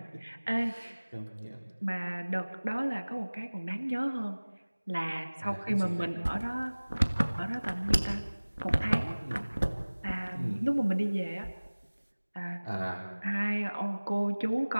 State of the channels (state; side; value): inverted; both; correlation -1.00